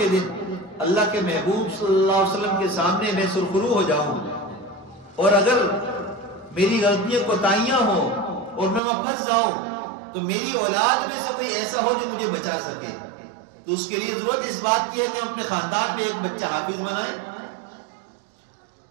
دن اللہ کے محبوب صلی اللہ علیہ وسلم کے سامنے میں سرخرو ہو جاؤں، اور اگر میری غلطیاں کوتاہیاں ہوں اور میں وہاں پھنس جاؤں تو میری اولاد میں سے کوئی ایسا ہو جو مجھے بچا سکے، تو اس کے لیے ضرورت اس بات کی ہے کہ ہم اپنے خاندان میں ایک بچہ حافظ بنائیں۔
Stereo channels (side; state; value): left; drops out; at 8.8 s